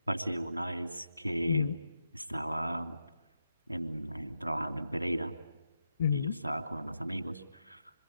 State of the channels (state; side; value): inverted; both; correlation -0.86